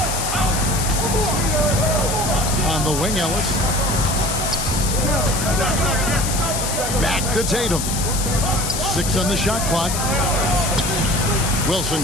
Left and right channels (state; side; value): noise; left; hiss, 3 dB below the sound